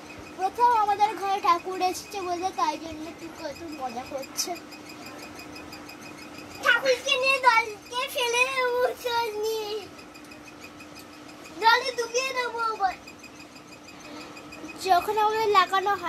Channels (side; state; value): both; identical; correlation 1.00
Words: আমাদের ঘরে ঠাকুর এসেছে বলে তাই জন্য কত মজা করছে। ঠাকুরকে নিয়ে দলকে ফেলে দেবো, জলে ডুবিয়ে দেবো। যখন আমাদের লাগানো